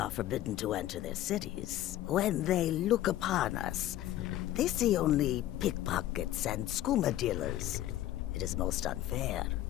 forbidden to enter their cities. When they look upon us, they see only pickpockets and skooma dealers. It is most unfair.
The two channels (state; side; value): quieter; right; 13.7 dB